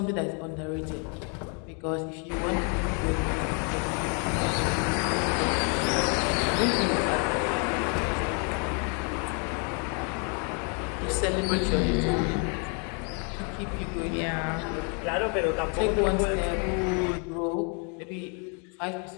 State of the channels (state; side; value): quieter; right; 38.0 dB